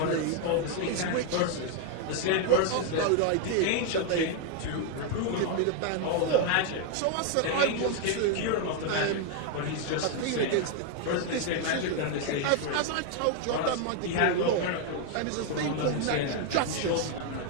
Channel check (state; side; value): different; both; correlation 0.01